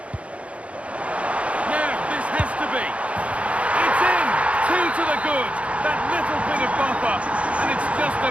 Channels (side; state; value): left; late; 0.063 ms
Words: Now, this has to be. It's in! 2 to the good. That little bit of buffer. And it's just a